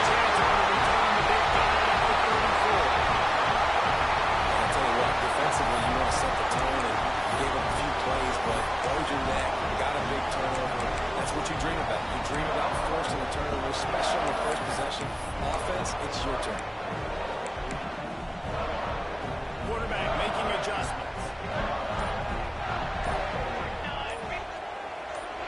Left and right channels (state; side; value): identical; both; correlation 1.00